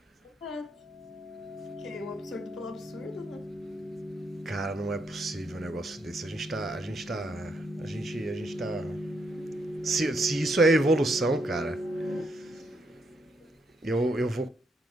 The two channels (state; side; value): normal; both; correlation 0.76